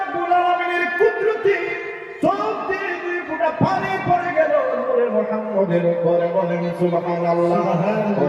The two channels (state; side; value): identical; both; correlation 1.00